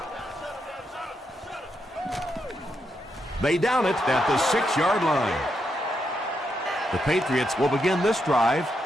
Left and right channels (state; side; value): normal; both; correlation 0.82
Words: They down it at the 6-yard line. The Patriots will begin this drive